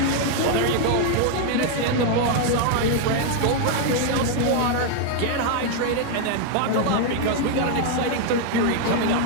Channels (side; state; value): both; different; correlation 0.00